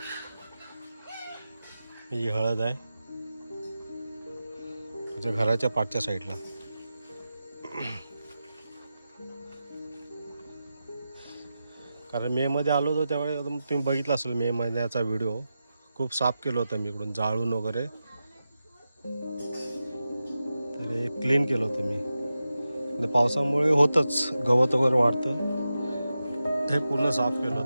ही हळद आहे माझ्या घराच्या पाठच्या साईडला. कारण मेमध्ये आलो होतो त्यावेळेस तुम्ही बघितलं असेल मे महिन्याचा व्हिडिओ. खूप साफ केलं होतं मी इकडून जाळून वगैरे, तर हे क्लीन केलं होतं मी. पावसामुळे होतंच, गवत वगैरे वाढतं. हे पूर्ण साफ केलं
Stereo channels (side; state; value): both; inverted; correlation -0.91